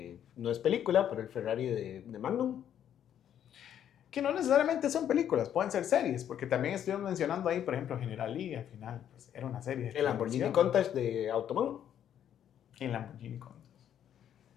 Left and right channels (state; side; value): quieter; right; 9.9 dB